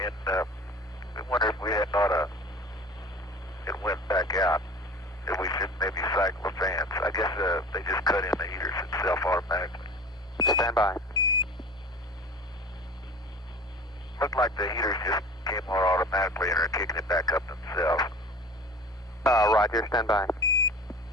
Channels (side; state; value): both; normal; correlation 0.39